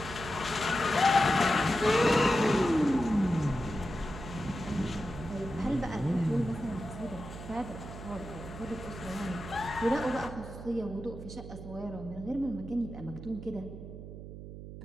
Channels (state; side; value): noise; right; hum, 11 dB below the sound